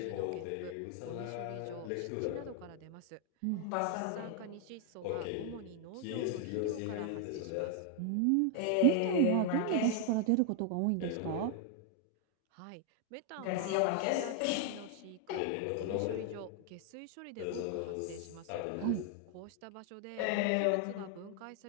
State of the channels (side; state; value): both; different; correlation 0.00